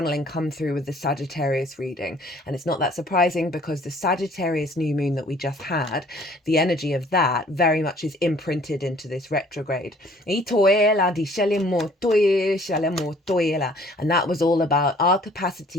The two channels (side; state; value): both; normal; correlation 0.56